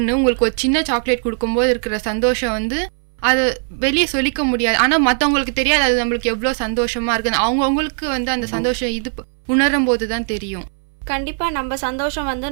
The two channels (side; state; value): left; silent; 63 dB below the other